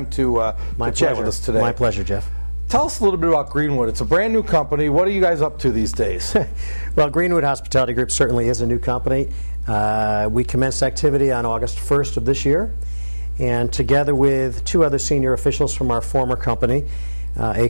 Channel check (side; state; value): both; inverted; correlation -1.00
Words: to chat with us today. My pleasure, Jeff. Tell us a little bit about Greenwood. It's a brand new company. What are you guys up to these days? Well, Greenwood Hospitality Group certainly is a new company. We commenced activity on August 1st of this year, and together with two other senior officials from our former company, A.